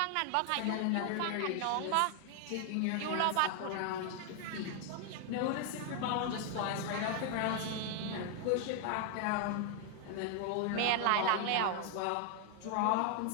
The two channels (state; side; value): different; both; correlation 0.00